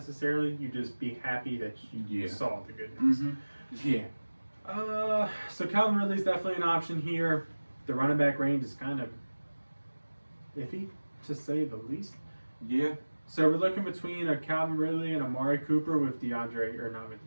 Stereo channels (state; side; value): inverted; both; correlation -1.00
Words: You just be happy that you saw the good news. Mm-hmm. Yeah. So Calvin Ridley's definitely an option here. The running back range is kind of iffy, to say the least. Yeah. So we're looking between a Calvin Ridley and Amari Cooper with